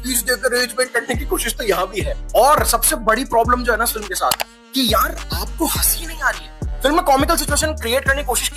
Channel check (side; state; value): both; identical; correlation 1.00